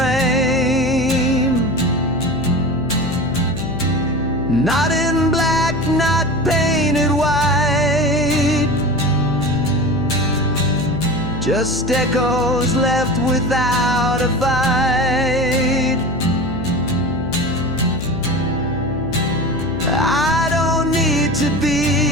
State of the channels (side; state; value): left; noise; hum, 8 dB below the sound